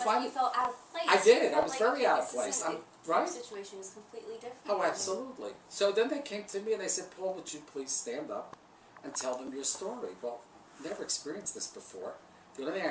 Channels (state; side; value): identical; both; correlation 1.00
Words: you felt out of place. I did. You I felt was like, very okay, out of this place. isn't- Right? Your situation is completely different. Oh, absolutely. So then they came to me and they said, Paul, would you please stand up and tell them your story? Well, never experienced this before. The only thing I